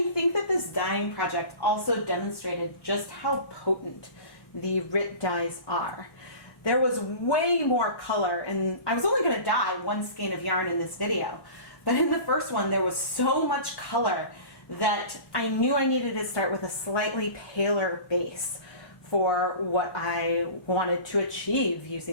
think that this dyeing project also demonstrated just how potent the Rit dyes are. There was way more color, and I was only going to dye one skein of yarn in this video, but in the first one there was so much color that I knew I needed to start with a slightly paler base for what I wanted to achieve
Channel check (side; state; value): right; late; 1.1 ms